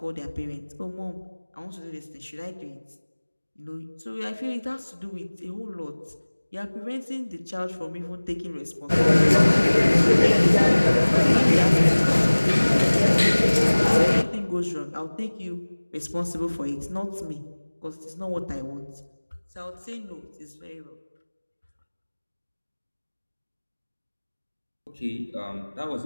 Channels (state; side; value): inverted; both; correlation -1.00